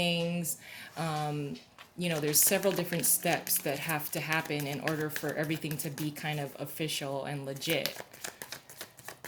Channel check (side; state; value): both; identical; correlation 1.00